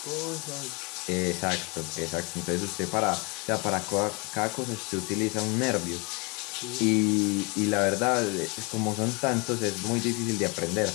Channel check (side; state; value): right; quieter; 30.2 dB